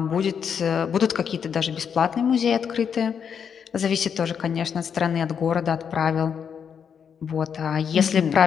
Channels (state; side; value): quieter; right; 7.3 dB